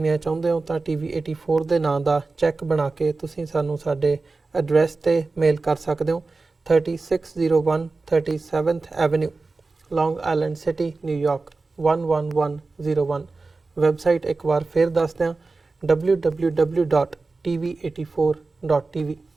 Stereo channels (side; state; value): left; quieter; 3.7 dB